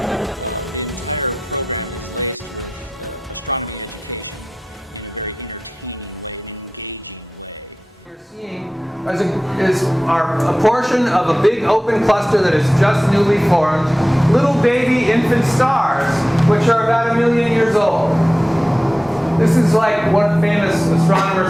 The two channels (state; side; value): normal; both; correlation 0.94